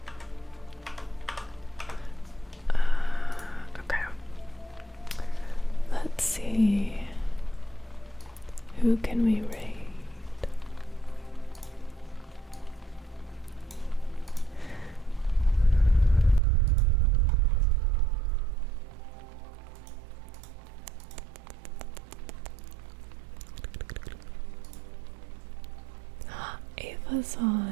Okay. Let's see. Who can we raid? Ava's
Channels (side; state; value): left; drops out; at 16.4 s